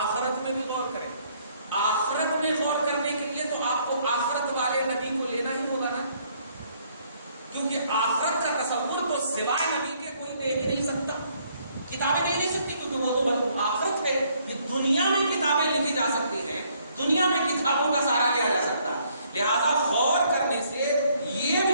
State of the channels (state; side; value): inverted; both; correlation -0.67